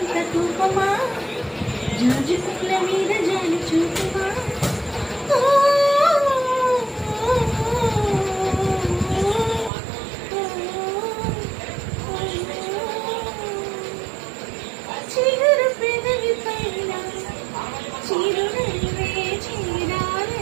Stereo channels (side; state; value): left; drops out; at 9.7 s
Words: కోపమా, జాజి పూల మీద జాలి చూపుమా. చిగురు పెదవి పైన చిరునవ్వే